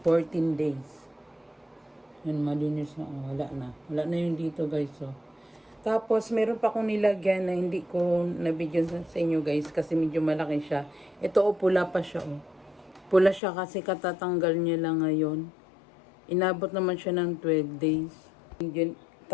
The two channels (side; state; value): right; drops out; at 13.4 s